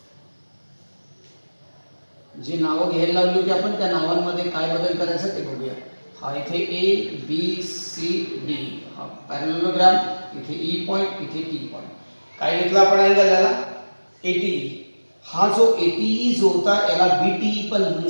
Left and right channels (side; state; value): both; inverted; correlation -1.00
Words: जी नावं घ्यायला लावली होती आपण त्या नावांमध्ये काय बदल करायचा ते बघूया. हा इथे ए बी सी डी हा पॅरलेलोग्राम, इथे ई पॉइंट, इथे टी पॉइंट. काय घेतलं आपण अँगल याला, एटी. हा जो एटीई जो होता याला बीटीई पण म्हणू